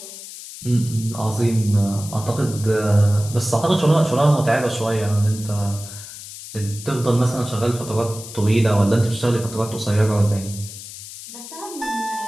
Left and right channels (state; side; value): noise; left; hiss, 13 dB below the sound